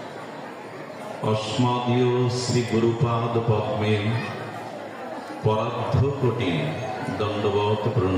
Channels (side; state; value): both; identical; correlation 1.00